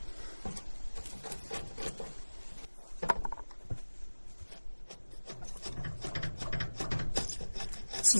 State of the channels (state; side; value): inverted; both; correlation -1.00